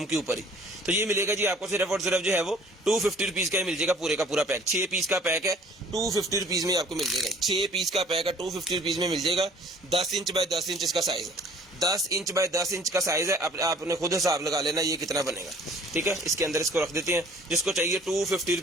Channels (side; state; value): both; normal; correlation 0.53